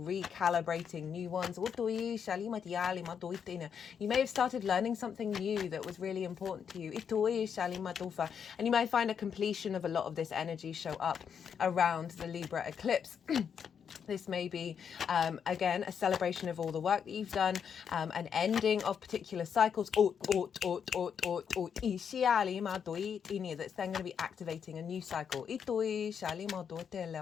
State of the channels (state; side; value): quieter; right; 7.4 dB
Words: recalibrating new ones. You may have started learning something new that was really important to you, and you may find a completion of a lot of this energy show up around the Libra eclipse. This may be, again, a celebration of all the work that you've done, an ending of particular cycles, that's then going to be activating a new cycle. You